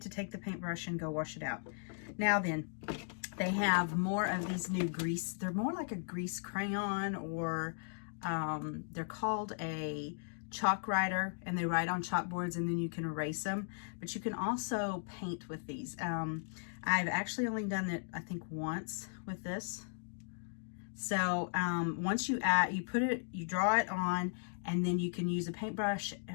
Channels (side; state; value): right; silent; digital silence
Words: to take the paintbrush and go wash it out. Now then, they have more of these new grease. They're more like a grease crayon, or they're called a chalk writer, and they write on chalkboards and then you can erase them. But you can also paint with these. I've actually only done it, I think, once with this. So once you draw it on, and then you can use a paintbrush